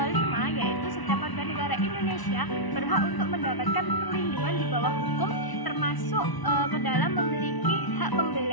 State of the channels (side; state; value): right; late; 1.0 ms